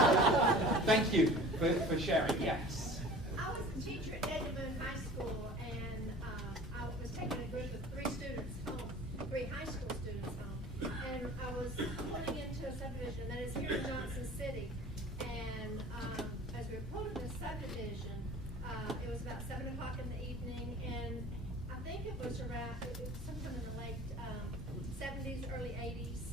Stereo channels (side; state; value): both; normal; correlation 0.43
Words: Thank you for sharing. Yes. I was a teacher at Edmond High School, and I was taking a group of 3 students home, 3 high school students home, and I was pulling into a subdivision that is here in Johnson City. And as we were pulling the subdivision, it was about 7 o'clock in the evening, and I think it was around, sometime in the late 70s, early 80s,